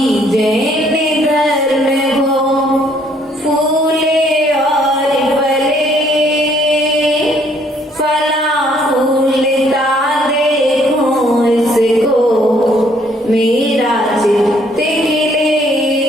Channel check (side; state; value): both; normal; correlation 0.65